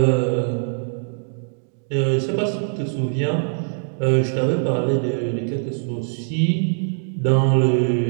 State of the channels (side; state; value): left; silent; digital silence